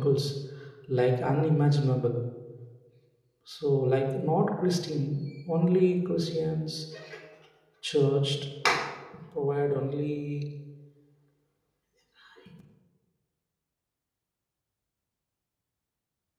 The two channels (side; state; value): both; identical; correlation 1.00